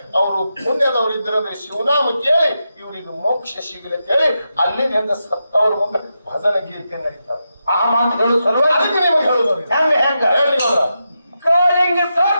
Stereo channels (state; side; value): inverted; both; correlation -0.87